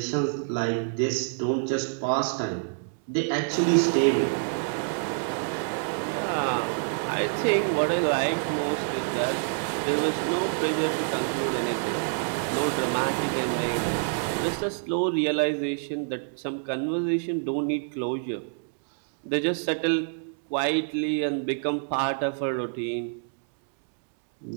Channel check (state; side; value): silent; left; digital silence